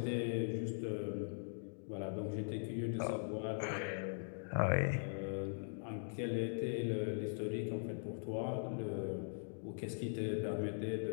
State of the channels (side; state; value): right; silent; digital silence